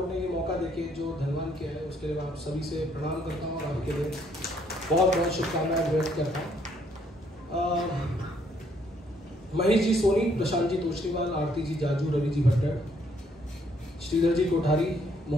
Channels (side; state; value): both; normal; correlation 0.69